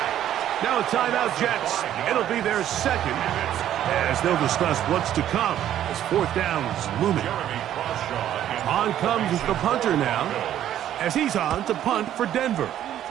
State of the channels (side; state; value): left; quieter; 11.4 dB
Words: Now a timeout, Jets. It'll be their 2nd, as they'll discuss what's to come as 4th down is looming. On comes the punter now, as he's on to punt for Denver.